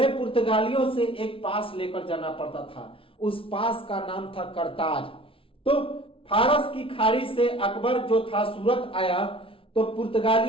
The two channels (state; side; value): late; right; 0.26 ms